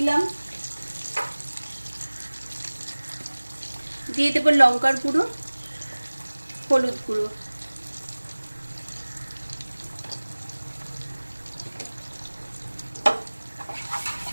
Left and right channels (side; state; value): both; inverted; correlation -1.00